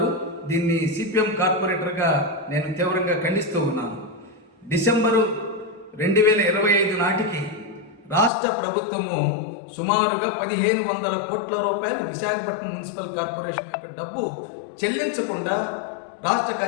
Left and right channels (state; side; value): drops out; right; at 8.3 s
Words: దీన్ని సిపిఎం కార్పొరేటర్గా నేను తీవ్రంగా ఖండిస్తూ ఉన్నాను. డిసెంబరు 2025 నాటికి రాష్ట్ర ప్రభుత్వము సుమారుగా 1500 కోట్ల రూపాయలు విశాఖపట్నం మున్సిపల్ కార్పొరేషన్ యొక్క డబ్బు చెల్లించకుండా రాష్ట్ర